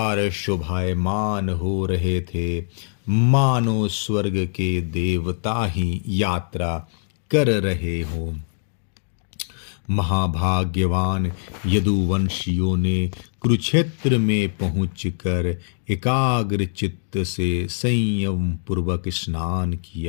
शोभायमान हो रहे थे, मानो स्वर्ग के देवता ही यात्रा कर रहे हों। महाभाग्यवान यदुवंशियों ने कुरुक्षेत्र में पहुंचकर एकाग्र चित्त से संयम पूर्वक स्नान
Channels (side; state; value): right; silent; digital silence